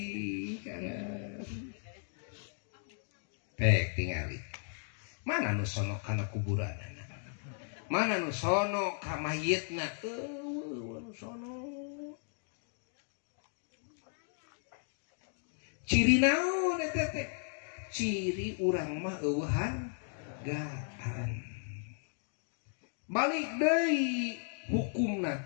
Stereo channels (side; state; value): right; silent; 54 dB below the other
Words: anger pek tingali mana nu sono kana kuburanna mana nu sono ka mayitna nu sono ciri naon eta teh ciri urang mah eueuhan hargaan. Balik deui hukumna